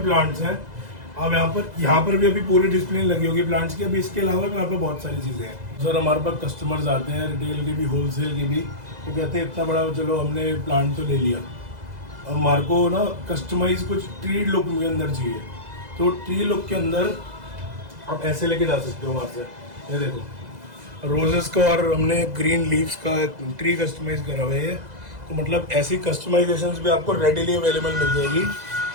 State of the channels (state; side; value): late; left; 2.0 ms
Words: हैं। अब यहाँ पर भी अभी पूरी डिस्प्ले लगी होगी प्लांट्स की। अभी इसके अलावा भी यहाँ पर बहुत सारी चीज़ें हैं। सर हमारे पास कस्टमर्स आते हैं, रिटेल की भी, होलसेल की भी, वो कहते हैं इतना बड़ा, चलो हमने प्लांट तो ले लिया, अब हमारे को ना कस्टमाइज कुछ ट्री लुक के अंदर चाहिए। तो ट्री लुक के अंदर आप ऐसे लेके जा सकते हो हमारे से। ये देखो रोजेस का, और हमने ग्रीन लीव्स का ट्री कस्टमाइज करा हुआ है। तो मतलब ऐसी कस्टमाइजेशंस भी आपको रेडीली अवेलेबल मिल जाएगी